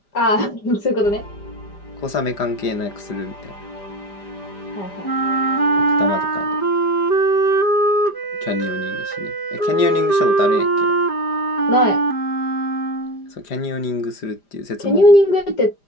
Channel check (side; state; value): right; late; 5.0 ms